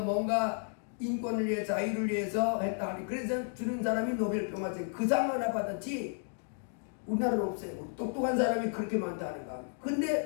뭔가 인권을 위해서 자유를 위해서 했다 하니 그래서 주는 사람이 노벨 평화상 그 상 하나 받았지 우리나라는 없어요. 똑똑한 사람이 그렇게 많다는가.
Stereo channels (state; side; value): silent; right; 56 dB below the other